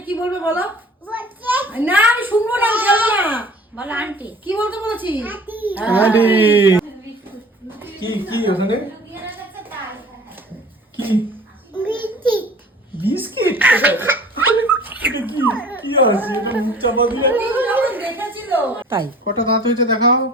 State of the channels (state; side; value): normal; both; correlation 0.46